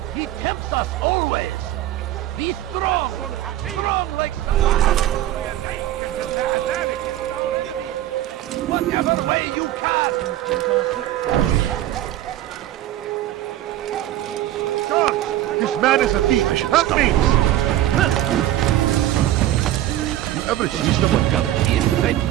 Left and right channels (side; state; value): left; quieter; 13.7 dB